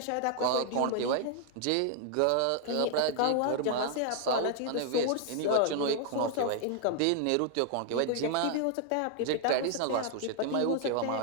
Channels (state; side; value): different; both; correlation 0.00